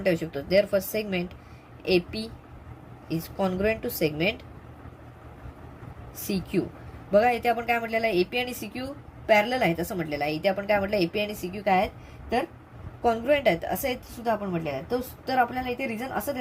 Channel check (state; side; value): identical; both; correlation 1.00